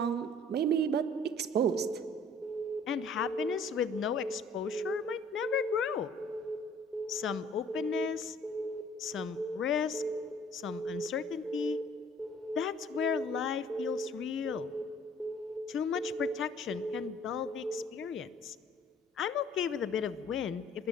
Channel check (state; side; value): normal; both; correlation 0.55